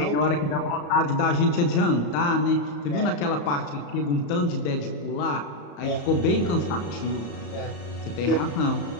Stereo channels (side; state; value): right; late; 34 ms